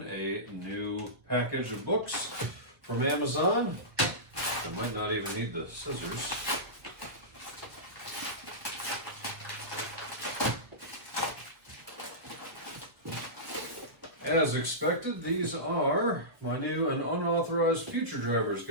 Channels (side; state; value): left; late; 1.2 ms